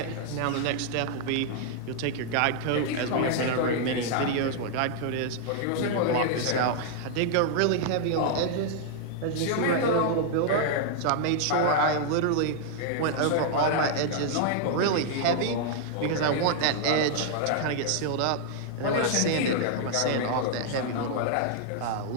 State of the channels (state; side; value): different; both; correlation -0.01